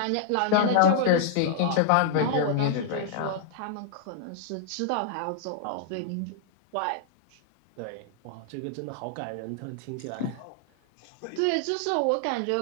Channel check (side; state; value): both; different; correlation -0.01